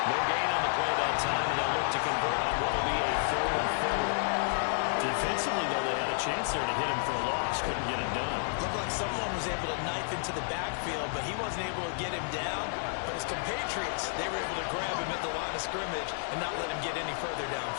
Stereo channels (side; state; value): right; silent; digital silence